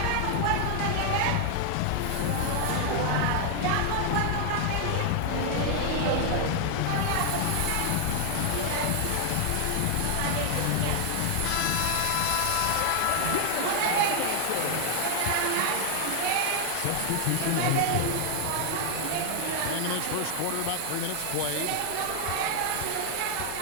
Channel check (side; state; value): both; different; correlation 0.00